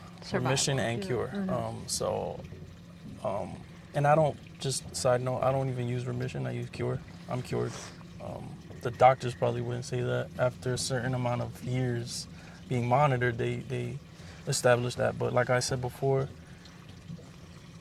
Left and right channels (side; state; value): both; identical; correlation 1.00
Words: remission and cure. And I don't, just side note, I don't even use remission, I use cure. I'm cured. The doctors probably wouldn't say that. After a certain amount of years being monitored, they established that. But like I said before,